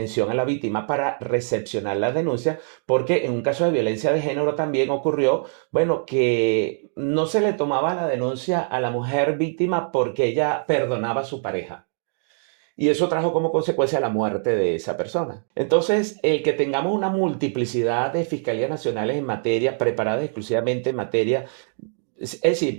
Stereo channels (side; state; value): left; silent; digital silence